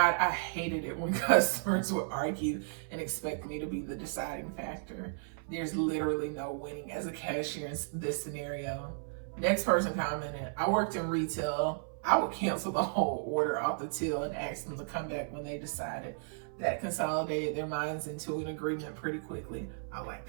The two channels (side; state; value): left; silent; 55 dB below the other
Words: I hated it when customers would argue and expect me to be the deciding factor. There's literally no winning as a cashier in this scenario. Next person commented, I worked in retail. I would cancel the whole order off the till and ask them to come back when they decided. That consolidated their minds into an agreement pretty quickly. I like